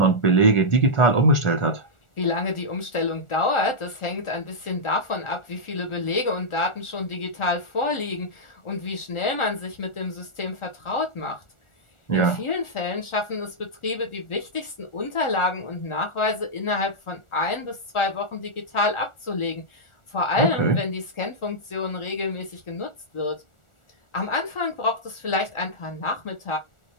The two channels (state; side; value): late; right; 1.4 ms